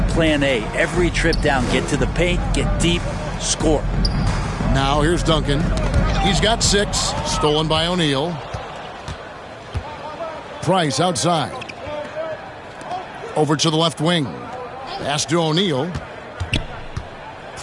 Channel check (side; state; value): both; identical; correlation 1.00